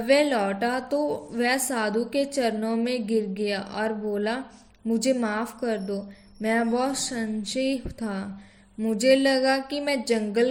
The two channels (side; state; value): both; identical; correlation 1.00